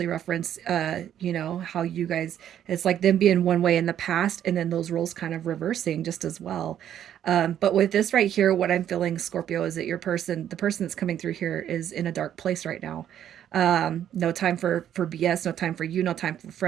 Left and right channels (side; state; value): left; quieter; 10.3 dB